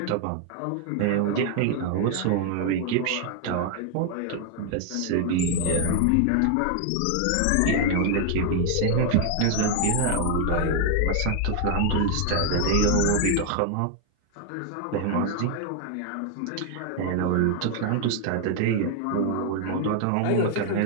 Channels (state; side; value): different; both; correlation 0.00